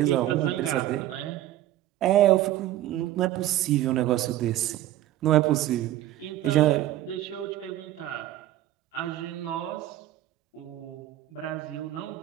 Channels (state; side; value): quieter; left; 13.9 dB